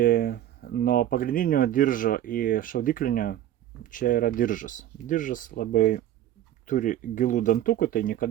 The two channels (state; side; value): quieter; left; 12.1 dB